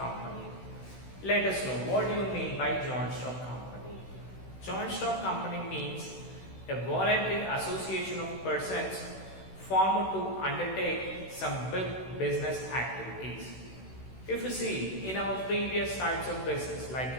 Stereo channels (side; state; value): right; late; 16 ms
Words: Let us know what do you mean by joint stock company. Joint stock company means a voluntary association of persons formed to undertake some big business activities. If you see in our previous types of business like